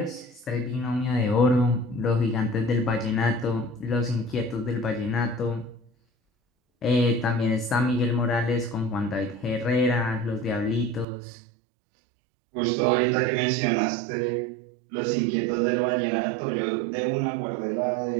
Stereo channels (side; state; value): left; drops out; at 11.1 s